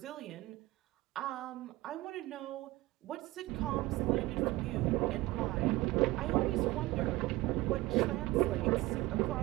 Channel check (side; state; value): left; quieter; 18.9 dB